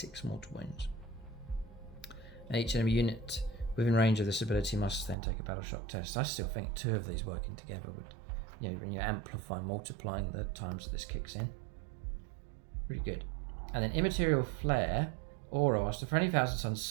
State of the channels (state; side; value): drops out; left; at 5.2 s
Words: mortal wounds. And each enemy unit within range of this ability must then take a battle shock test. I still think 2 of these working together would, when you amplify, multiplying the times that this kicks in. Really good. And then Immaterial Flare, Aura, whilst for any Thousand Suns